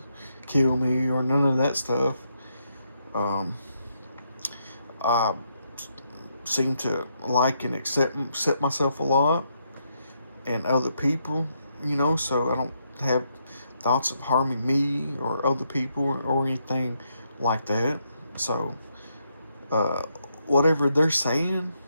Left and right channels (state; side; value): inverted; both; correlation -0.78